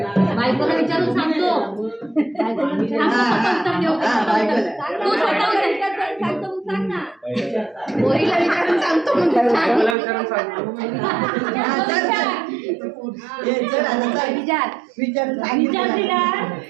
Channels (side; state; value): left; drops out; at 10.0 s